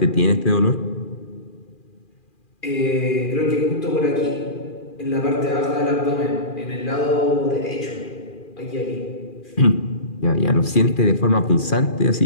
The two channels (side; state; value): right; late; 2.4 ms